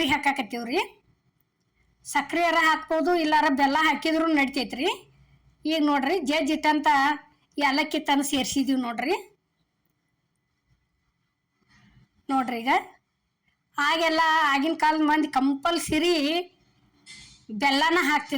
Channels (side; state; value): both; identical; correlation 1.00